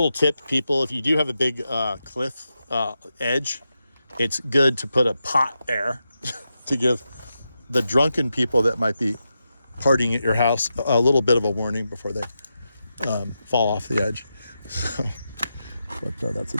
tip, people, if you do have a big cliff edge, it's good to put a pot there to give the drunken people that might be partying at your house a little bit of a warning before they fall off the edge. So, but that's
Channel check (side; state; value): both; inverted; correlation -0.88